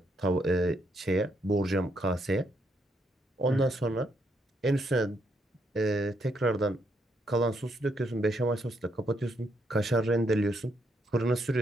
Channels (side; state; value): both; normal; correlation 0.76